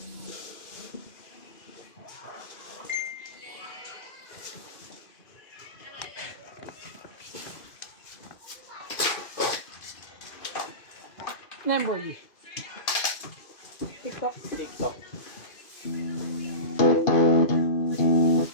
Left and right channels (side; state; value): right; late; 2.5 ms